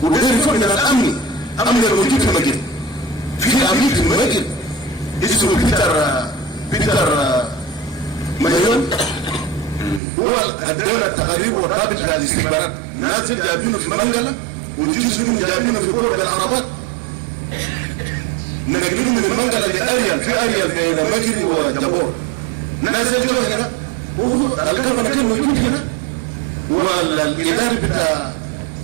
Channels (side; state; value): left; drops out; at 10.0 s